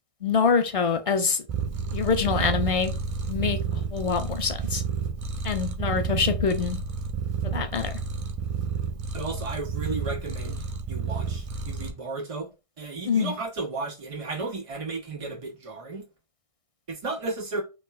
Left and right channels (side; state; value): left; late; 1.6 ms